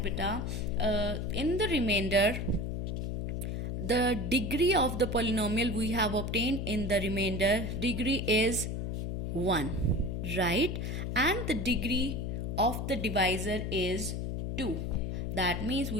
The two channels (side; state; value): left; noise; hum, 2 dB below the sound